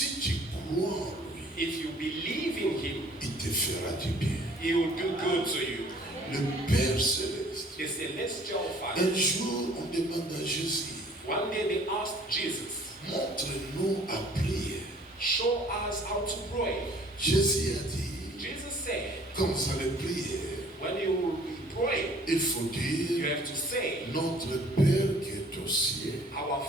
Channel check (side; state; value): both; normal; correlation 0.54